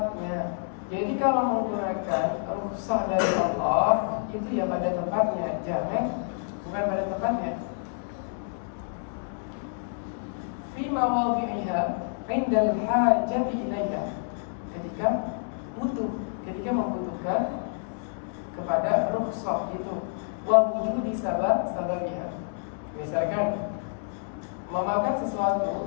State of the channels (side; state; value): right; silent; digital silence